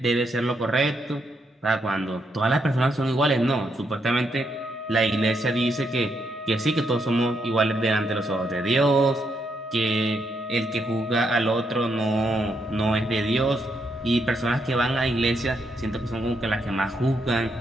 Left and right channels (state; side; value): normal; both; correlation 0.78